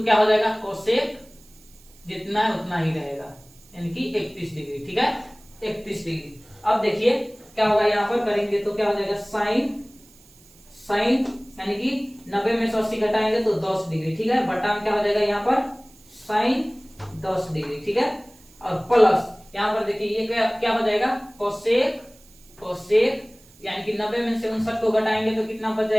क्या हो जाएगा कोसेक जितना है उतना ही रहेगा यानी कि 31 डिग्री, ठीक है, 31 डिग्री। अब देखिए क्या होगा यहाँ पर करेंगे तो क्या हो जाएगा साइन यानी कि 90 में से 80 घटाएंगे तो 10 डिग्री, ठीक है, बटा में क्या हो जाएगा यहाँ पर साइन 10 डिग्री, ठीक है, और प्लस यहाँ पर देखिए ये क्या हो जाएगा कोसेक यानी कि 90 में से 59 को घटाएंगे तो कितना बच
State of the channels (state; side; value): noise; right; hiss, 26 dB below the sound